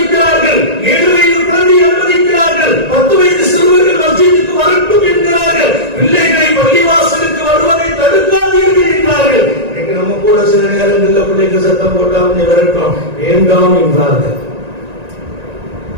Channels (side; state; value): left; late; 1.9 ms